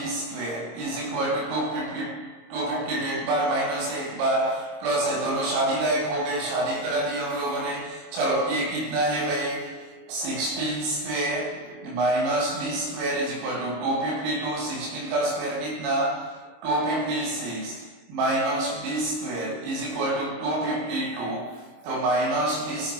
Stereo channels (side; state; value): left; late; 26 ms